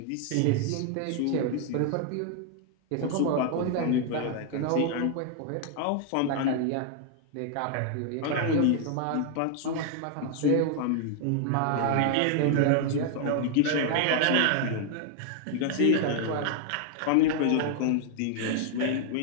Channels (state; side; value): different; both; correlation 0.00